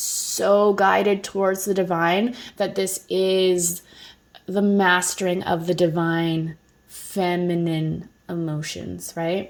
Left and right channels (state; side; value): identical; both; correlation 1.00